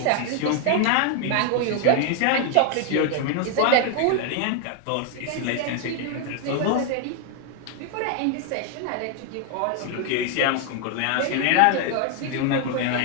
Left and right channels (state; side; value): different; both; correlation 0.00